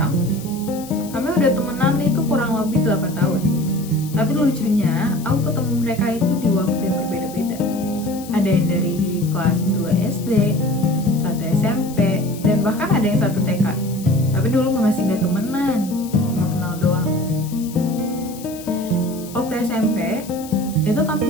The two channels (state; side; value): noise; left; hiss, 17 dB below the sound